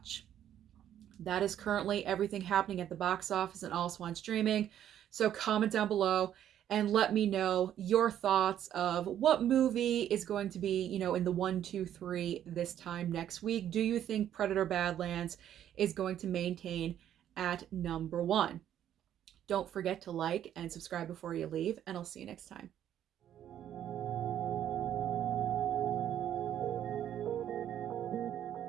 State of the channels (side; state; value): left; quieter; 10.7 dB